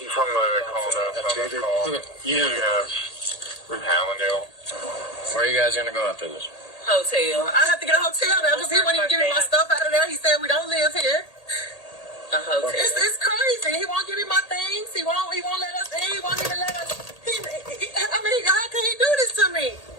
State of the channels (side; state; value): right; late; 1.8 ms